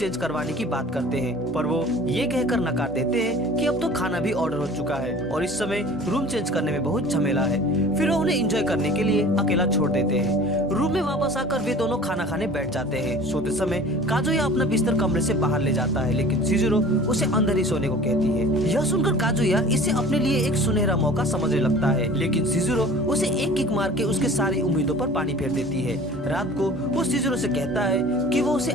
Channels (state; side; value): normal; both; correlation 0.44